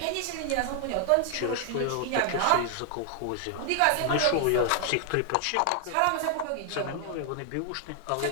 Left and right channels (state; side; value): different; both; correlation 0.00